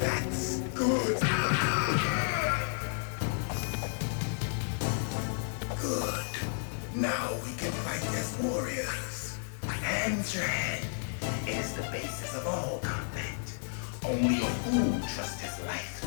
good. Good. Now we can fight as warriors. Hand to hand. It is the basis of all combat. Only a fool trusts his life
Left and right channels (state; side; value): silent; right; digital silence